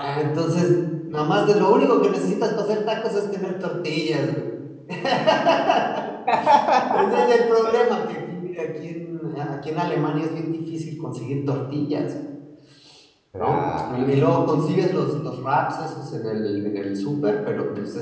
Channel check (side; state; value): both; identical; correlation 1.00